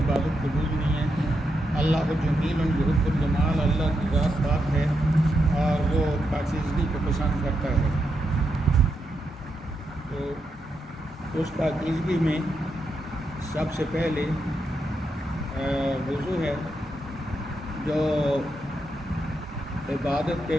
عبادت قبول نہیں ہے۔ اللہ جمیل یحب الجمال، اللہ کی ذات پاک ہے اور وہ پاکیزگی کو پسند کرتا ہے۔ تو اس پاکیزگی میں سب سے پہلے وضو ہے، جو عبادت کے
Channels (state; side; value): normal; both; correlation 0.83